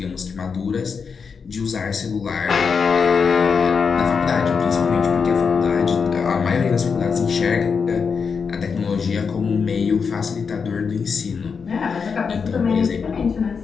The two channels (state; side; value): quieter; right; 5.7 dB